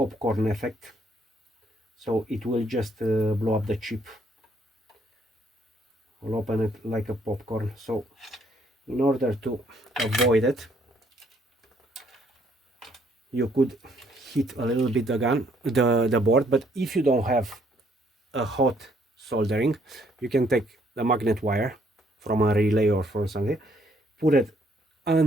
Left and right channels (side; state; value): both; normal; correlation 0.67